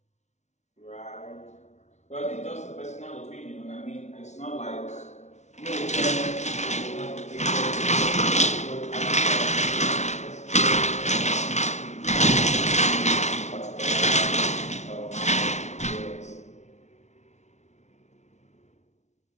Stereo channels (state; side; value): late; right; 0.33 ms